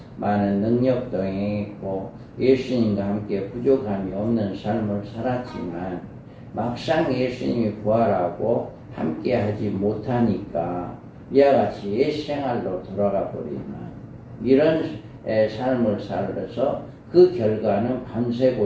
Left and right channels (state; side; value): identical; both; correlation 1.00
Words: 많은 능력도 행했고 예수님과 함께 부족함이 없는 삶을 살았지만 막상 예수님이 부활하고 함께 하지 못하니까 이와 같이 옛 생활로 돌아가 버리는 이런 삶을 살아서 그 결과는 밤새